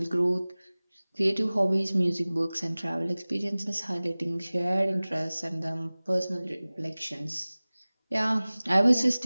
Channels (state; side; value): inverted; both; correlation -0.99